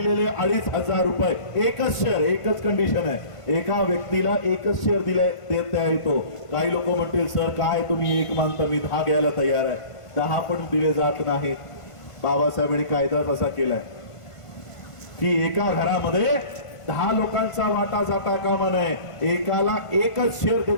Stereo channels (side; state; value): right; late; 1.5 ms